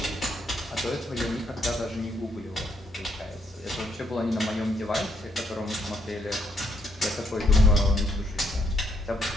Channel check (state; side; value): normal; both; correlation 0.73